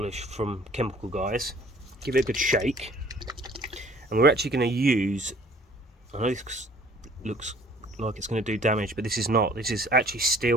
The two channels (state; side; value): normal; both; correlation 0.54